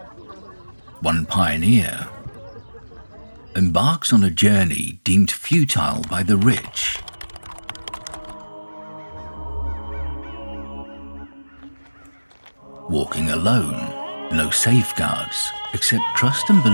one pioneer, embarks on a journey deemed futile by the rich. Walking alone, no safeguards except trust and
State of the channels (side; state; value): both; inverted; correlation -1.00